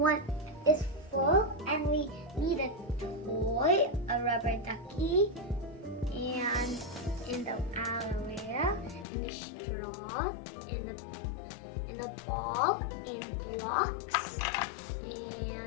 is full and we need a toy, a rubber ducky, and in the aloe vera, and a straw, and a ball, and blocks,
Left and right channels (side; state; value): right; drops out; at 9.1 s